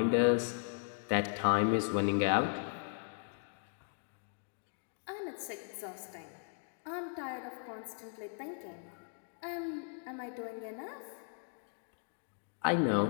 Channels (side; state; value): right; silent; digital silence